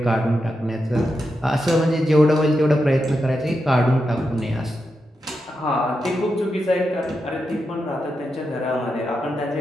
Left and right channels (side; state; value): both; normal; correlation 0.87